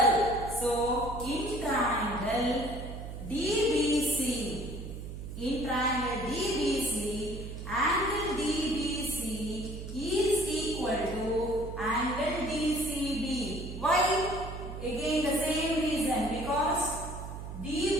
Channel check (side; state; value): right; noise; hum, 9 dB below the sound